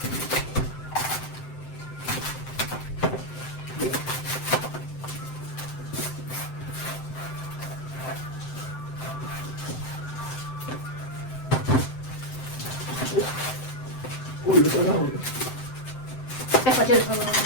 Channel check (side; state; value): right; late; 7.8 ms